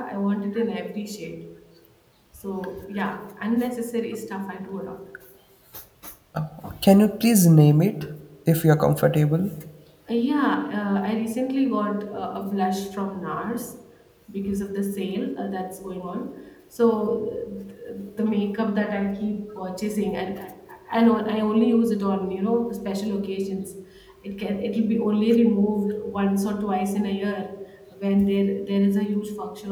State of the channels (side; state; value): both; identical; correlation 1.00